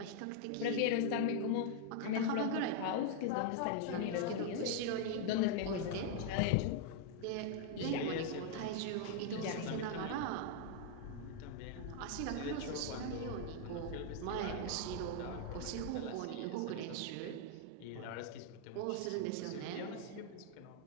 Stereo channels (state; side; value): different; both; correlation 0.00